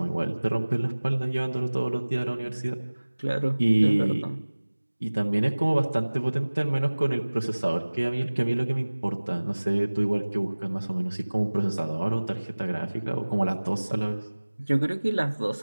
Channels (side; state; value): both; inverted; correlation -1.00